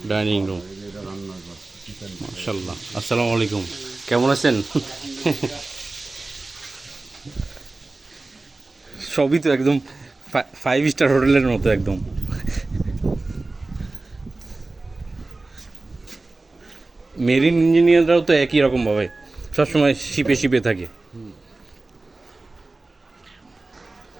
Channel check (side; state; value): left; quieter; 3.2 dB